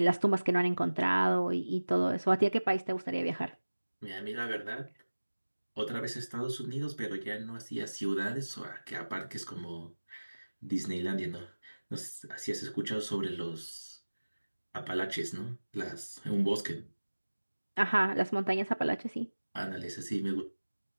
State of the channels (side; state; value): both; inverted; correlation -1.00